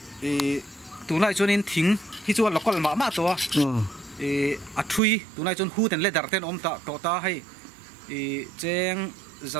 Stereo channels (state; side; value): drops out; left; at 5.0 s